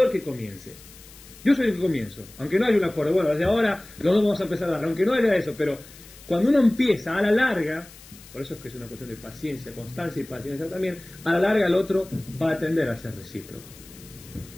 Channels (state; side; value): noise; left; hiss, 21 dB below the sound